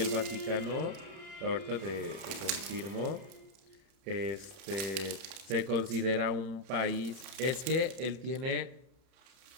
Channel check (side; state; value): left; late; 31 ms